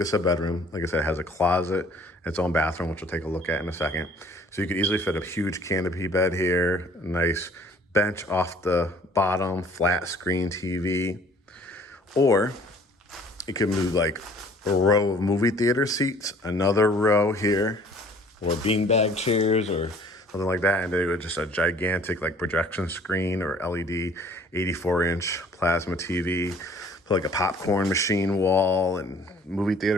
a bedroom, like I said, it has a closet, its own bathroom, which we'll take a look at in a second. So you could easily fit a huge canopy bed here, a nice bench off the bottom, flat screen TV, or you can move like a row of movie theater seats, another row here, or beanbag chairs or something like that, and then with just a gigantic like projection screen or LED 84-inch plasma TV. Put like a popcorn machine wall and movie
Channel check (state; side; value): normal; both; correlation 0.54